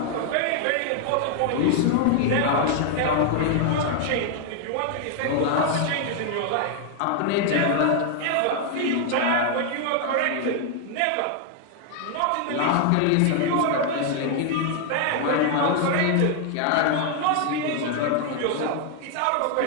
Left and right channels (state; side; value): different; both; correlation 0.00